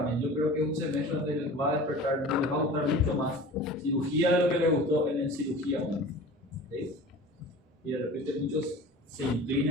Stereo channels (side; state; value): both; normal; correlation 0.39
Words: Yo creo que es un semestre donde les va a despertar, les va a gustar mucho más cirugía de lo que les gustó en el cirugía 1. ¿Sí? Y de repente muchos se